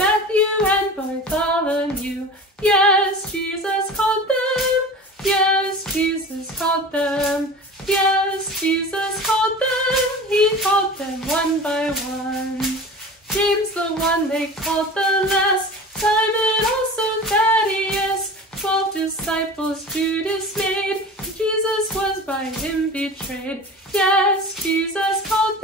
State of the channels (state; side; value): normal; both; correlation 0.36